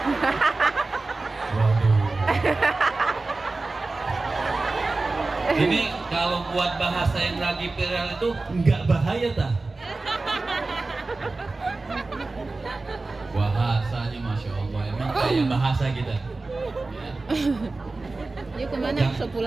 Ini kalau buat bahasa yang lagi viral itu nggak bahaya tah? Bahasanya Masya Allah, emang kayak bahasa kita. Ya. Yuk kemana? Bisa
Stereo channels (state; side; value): quieter; left; 3.4 dB